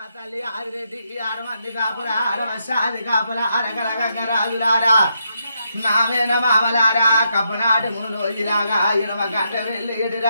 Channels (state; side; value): inverted; both; correlation -0.80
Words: తల్లి ఆదిరెడ్డి 6 మంది కాపుల 6 వర్షాది కాపుల అరకల గంగ రాజులారా నావేన మామలారా కప్పనాటి మునులో ఇలాగా 8 గంట వెళ్ళి ఎడి